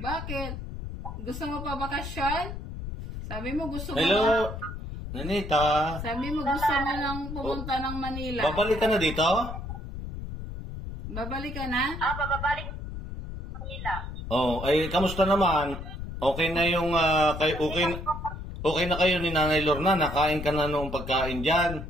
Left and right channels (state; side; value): noise; left; rumble, 8 dB below the sound